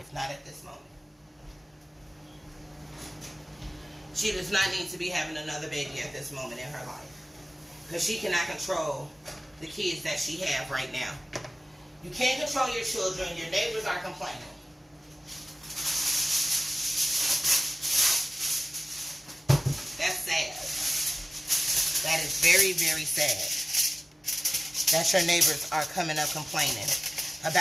Not at this moment. She does not need to be having another baby at this moment in her life. Because she cannot control the kids that she have right now. You can't control your children. Your neighbors are complaining. That's sad. That is very, very sad. That your neighbors are coming up complaining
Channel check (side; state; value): both; normal; correlation 0.97